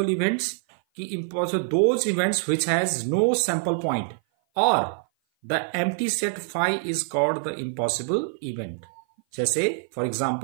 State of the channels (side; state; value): left; silent; 56 dB below the other